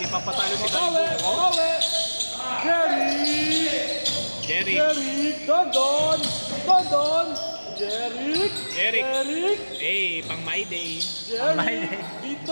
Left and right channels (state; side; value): inverted; both; correlation -1.00